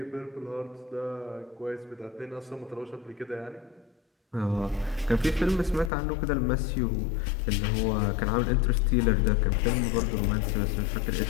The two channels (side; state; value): right; drops out; at 5.9 s